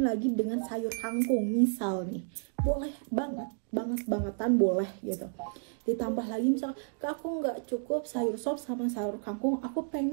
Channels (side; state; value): left; silent; digital silence